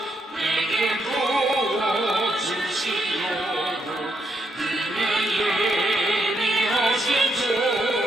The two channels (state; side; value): normal; both; correlation 0.78